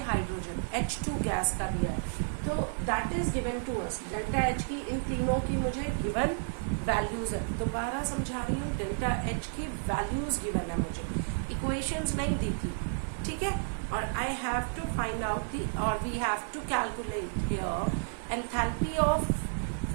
H2 gas का दिया है. तो that is given to us. Delta H की इन तीनों की मुझे गिवन वैल्यूज है. दोबारा समझा रही हूँ, डेल्टा H की वैल्यूज गिवन है मुझे, इक्वेशंस नहीं दी थी. ठीक है, और I have to find out the, और we have to calculate here enthalpy of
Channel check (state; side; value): silent; left; 57 dB below the other